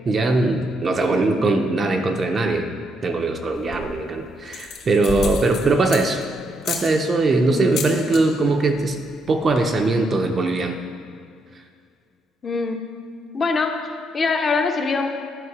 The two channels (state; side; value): normal; both; correlation 0.78